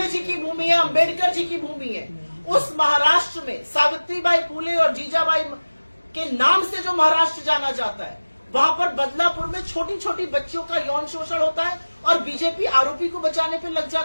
जी की भूमि है, अंबेडकर जी की भूमि है, उस महाराष्ट्र में सावित्रीबाई फूले और जीजाबाई के नाम से जो महाराष्ट्र जाना जाता है, वहां पर बदलापुर में छोटी छोटी बच्चियों का यौन शोषण होता है और बीजेपी आरोपी को बचाने पे लग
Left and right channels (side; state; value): both; inverted; correlation -1.00